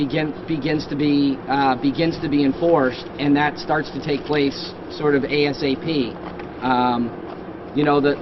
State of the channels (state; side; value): identical; both; correlation 1.00